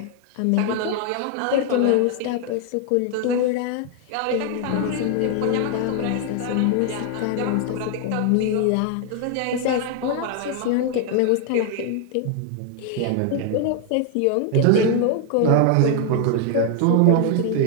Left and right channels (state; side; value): different; both; correlation 0.00